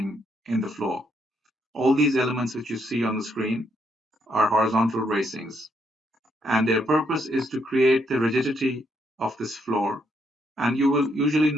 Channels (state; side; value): normal; both; correlation 0.75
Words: in the floor. All these elements which you see on the screen are horizontal bracings, and their purpose is to create the rigidity of this floor. And you will usually